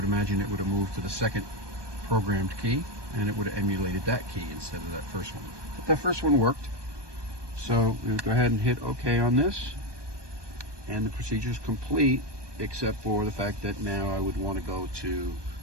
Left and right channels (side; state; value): left; late; 1.2 ms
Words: imagine it would have moved to the second programmed key, and it would have emulated that key instead of that first one. But that first one worked. So we'll go ahead and hit OK on this, and the procedure is complete, except for the fact that now I would want to go to